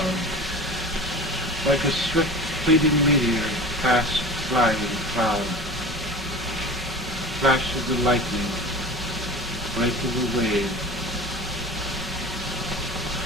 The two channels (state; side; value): normal; both; correlation 0.34